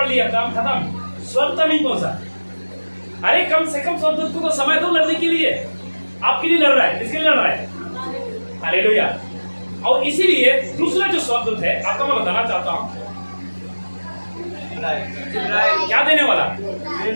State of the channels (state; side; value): inverted; both; correlation -1.00